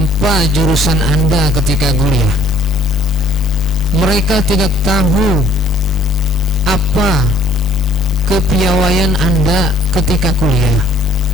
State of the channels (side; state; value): both; normal; correlation 0.59